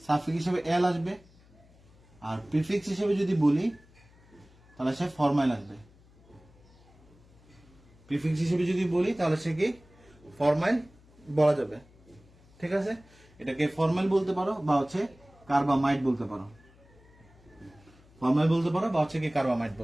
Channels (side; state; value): left; noise; hum, 27 dB below the sound